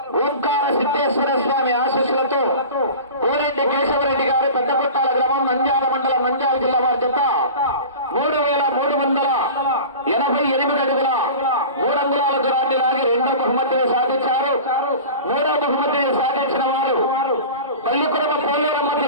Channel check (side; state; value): both; inverted; correlation -0.35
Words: ఓంకార సిద్ధేశ్వర స్వామి ఆశీస్సులతో కోరెడ్డి కేశవరెడ్డి గారు పెద్దకొట్టాల గ్రామం నంద్యాల మండలం నంద్యాల జిల్లా వారి జత 3388 అడుగుల 3 అంగుళాల దూరాన్ని లాగి రెండో బహుమతిని సాధించారు. మూడో బహుమతిని సాధించిన వారు పల్లికురమ పోలేరమ్మతి